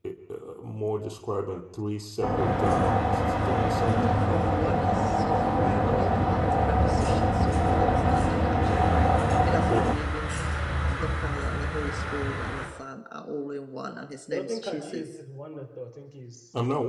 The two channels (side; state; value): both; identical; correlation 1.00